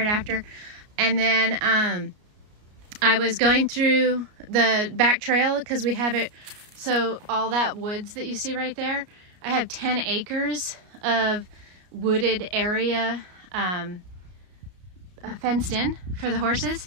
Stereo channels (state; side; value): late; left; 33 ms